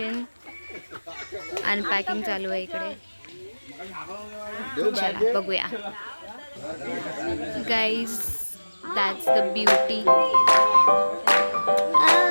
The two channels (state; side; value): inverted; both; correlation -1.00